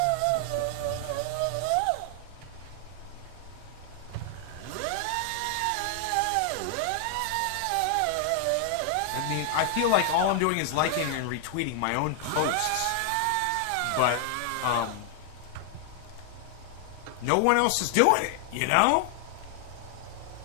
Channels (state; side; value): different; both; correlation 0.00